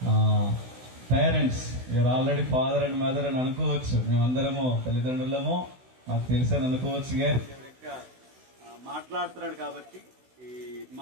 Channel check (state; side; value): late; left; 16 ms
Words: parents, you're already father and mother అని అనుకోవచ్చు. మేమందరము తల్లిదండ్రులము, మాకు తెలుసని అనుకోవచ్చు. కానీ మాట్లాడుతున్నాడు కాబట్టి ఈ